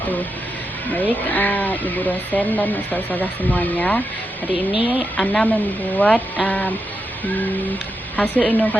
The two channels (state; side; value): normal; both; correlation 0.86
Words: Baik, ibu dosen dan ustazah semuanya. Hari ini Ana membuat hasil